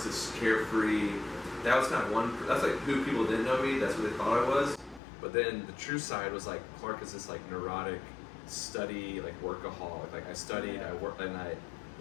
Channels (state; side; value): drops out; right; at 5.0 s